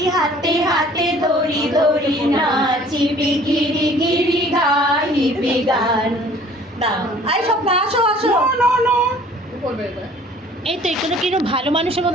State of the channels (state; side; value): normal; both; correlation 0.52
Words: হাতে হাতে ধরি ধরি নাচিবি গিরি গিরি গাইবি গান। দাও আই সব না আসো আসো। করবে এবার। এই তো এখানে কিরকম ভালো মানুষের